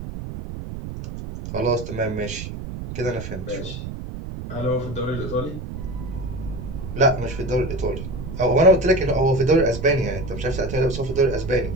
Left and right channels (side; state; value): right; noise; rumble, 8 dB below the sound